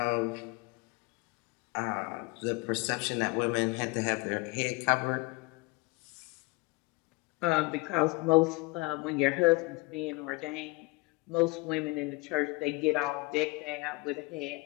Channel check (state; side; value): quieter; right; 24.7 dB